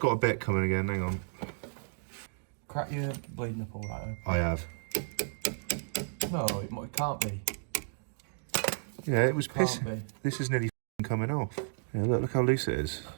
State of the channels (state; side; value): silent; left; digital silence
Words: a bit coming again, hang on. Crack your bleed nipple right open. I have. No, it can't be. Yeah, it was piss. Can't be. This is nearly coming off. Yeah, look how loose it is.